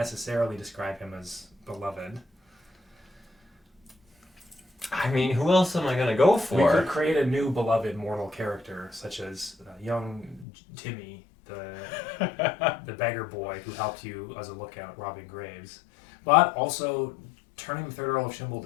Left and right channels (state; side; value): drops out; right; at 10.5 s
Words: describe him as beloved. I mean, who else am I going to go We for? could create a new beloved mortal character, such as young Timmy, the beggar boy who helped you as a lookout robbing graves. But also, turning the 3rd Earl of